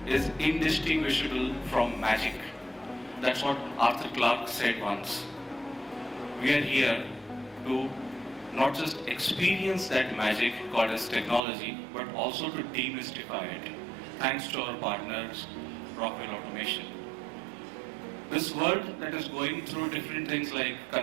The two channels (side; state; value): left; drops out; at 11.4 s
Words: is indistinguishable from magic. That's what Arthur Clarke said once. We are here to not just experience that magic called as technology, but also to demystify it, thanks to our partners, Rockwell Automation. This world that is going through different things like